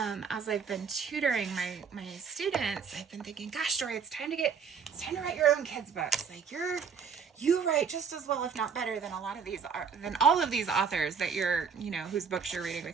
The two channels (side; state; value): left; quieter; 6.4 dB